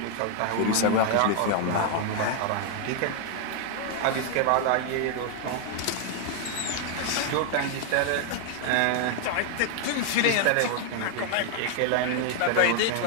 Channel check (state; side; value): different; both; correlation 0.00